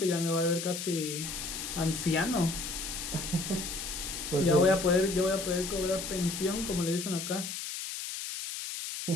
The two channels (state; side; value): noise; left; hiss, 6 dB below the sound